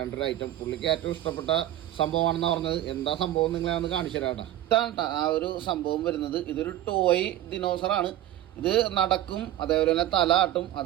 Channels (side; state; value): left; quieter; 13.3 dB